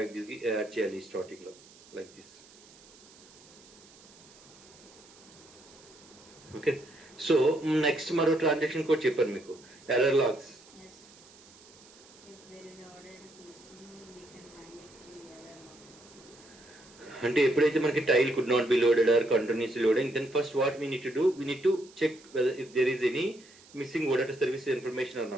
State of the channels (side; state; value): right; noise; hiss, 24 dB below the sound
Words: add చేయాలి స్టార్టింగ్లో, like this. Okay, so next మరో ట్రాన్సాక్షన్ కోడ్ చెప్పాను మీకు, ఎర్రర్ లాగ్స్. అంటే ఎప్పుడైతే మనకి tile could not be loaded or continuously loading, then first what we need to do, we need to check whether if there is any missing OData service information or